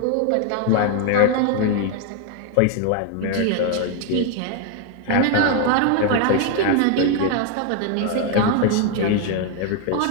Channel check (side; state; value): both; different; correlation 0.01